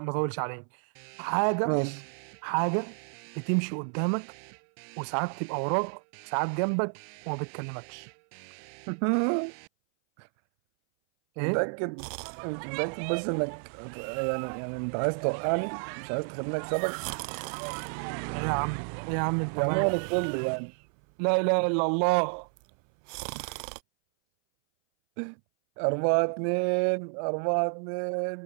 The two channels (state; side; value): silent; left; 58 dB below the other